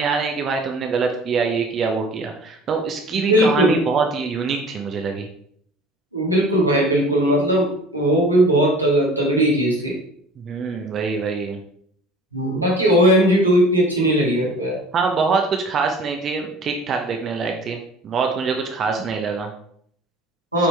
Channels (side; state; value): both; normal; correlation 0.45